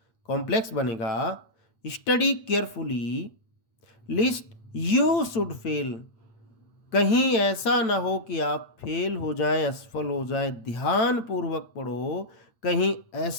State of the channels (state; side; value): late; right; 8.7 ms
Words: कॉम्प्लेक्स बनेगा, study carefully list you should fail, कहीं ऐसा ना हो कि आप फेल हो जाएं, असफल हो जाएं। ध्यानपूर्वक पढ़ो, कहीं